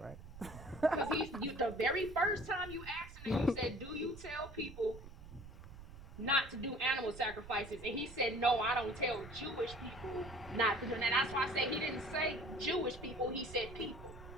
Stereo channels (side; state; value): right; noise; rumble, 15 dB below the sound